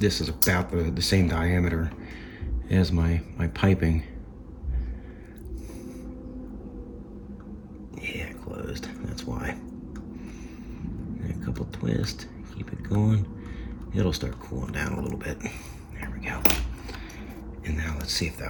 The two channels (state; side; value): identical; both; correlation 1.00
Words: is about the same diameter as my piping. Yeah, closed. That's why. And a couple twists. Keep it going. It'll start cooling down a little bit. There we go. And now let's see if